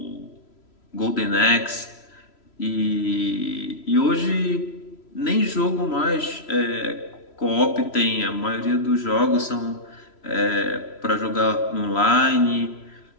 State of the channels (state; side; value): late; right; 3.0 ms